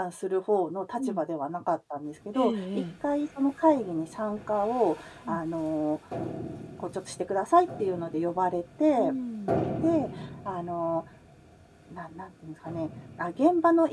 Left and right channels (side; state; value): both; identical; correlation 1.00